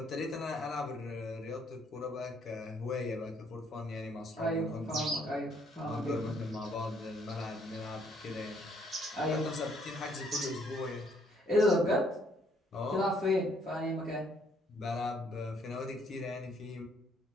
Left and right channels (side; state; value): both; normal; correlation 0.67